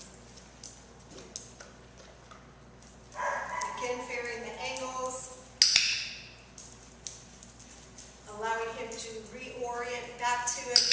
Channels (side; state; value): both; identical; correlation 1.00